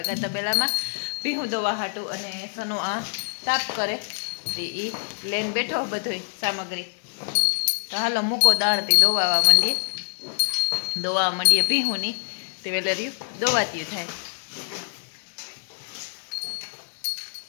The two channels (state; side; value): silent; right; 60 dB below the other